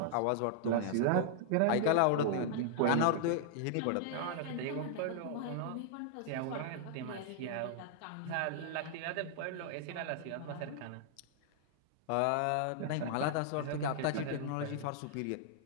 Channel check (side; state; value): both; different; correlation -0.01